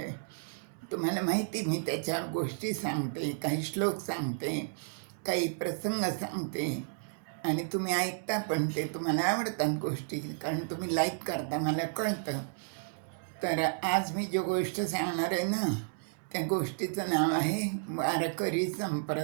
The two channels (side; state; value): left; silent; digital silence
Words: तुम्हाला माहिती, मी त्याच्यावर गोष्टी सांगते, काही श्लोक सांगते, काही प्रसंग सांगते आणि तुम्ही ऐकता पण. ते तुम्हाला आवडतात गोष्टी, कारण तुम्ही लाईक करता, मला कळतं. तर आज मी जो गोष्ट सांगणार आहे ना, त्या गोष्टीचं नाव आहे वारकरी